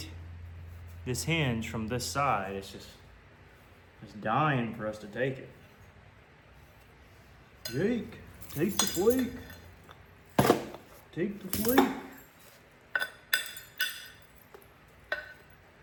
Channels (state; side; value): identical; both; correlation 1.00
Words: this hinge from this side. It's just dying for us to take it. Jake, take the flake. Take the flake.